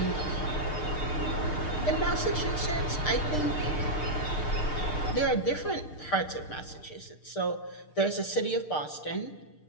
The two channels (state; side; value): late; right; 6.6 ms